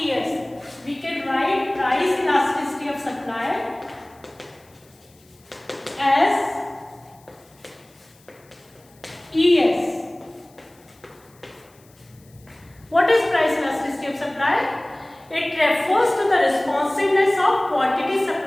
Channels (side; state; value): left; noise; hiss, 30 dB below the sound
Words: We can write price elasticity of supply as ES. What is price elasticity of supply? It refers to the responsiveness of quantity